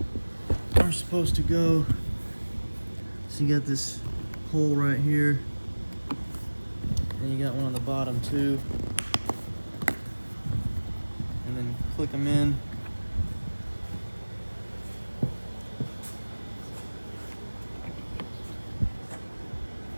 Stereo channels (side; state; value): both; inverted; correlation -1.00